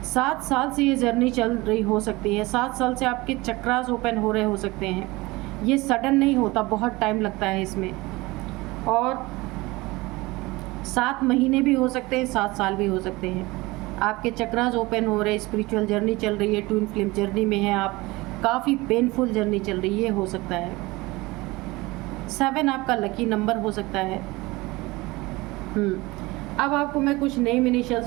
7 साल से ये जर्नी चल रही हो सकती है। 7 साल से आपके चक्रास ओपन हो रहे हो सकते हैं। ये सडन नहीं होता, बहुत टाइम लगता है इसमें। और 7 महीने भी हो सकते हैं, 7 साल भी हो सकते हैं। आपके चक्रास ओपन हो रहे, स्पिरिचुअल जर्नी चल रही है, ट्विन फ्लेम जर्नी में है आप, काफ़ी पेनफुल जर्नी चल रही है, हो सकता है। 7 आपका लकी नंबर हो सकता है। अब आपको मैं कुछ नेम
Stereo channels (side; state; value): left; quieter; 21.7 dB